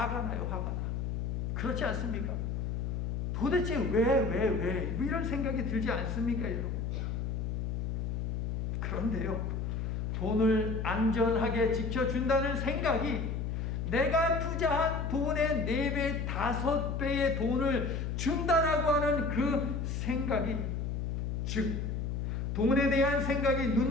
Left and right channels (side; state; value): left; noise; hum, 2 dB below the sound